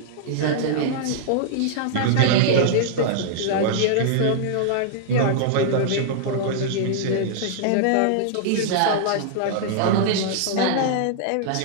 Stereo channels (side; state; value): both; different; correlation -0.01